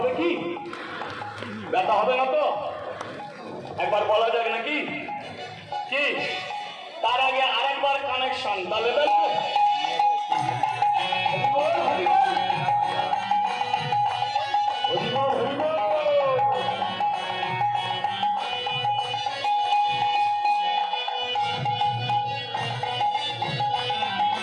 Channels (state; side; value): identical; both; correlation 1.00